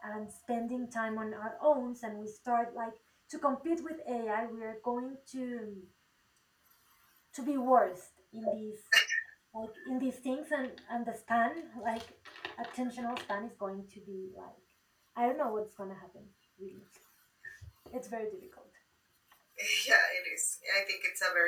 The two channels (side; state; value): both; identical; correlation 1.00